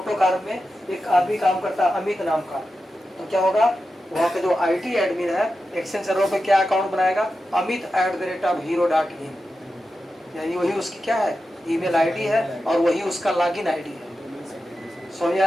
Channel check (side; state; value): both; normal; correlation 0.91